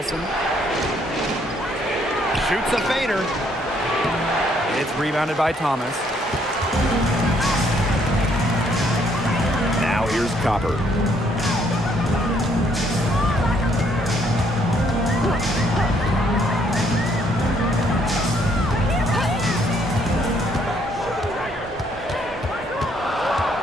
Shoots a fader. It's rebounded by Thomas. Now here's Copper.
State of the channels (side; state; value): both; normal; correlation 0.68